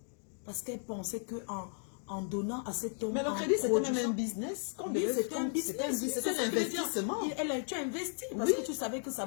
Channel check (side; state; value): right; silent; 54 dB below the other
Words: Parce qu'elle pensait qu'en donnant à cet homme... Mais le crédit, c'était même un business. Oui, c'était un business. C'était un investissement. Tu as investi parce que tu savais que ça